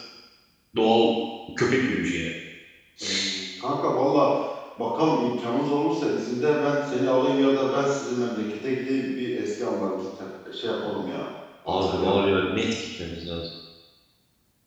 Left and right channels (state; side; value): identical; both; correlation 1.00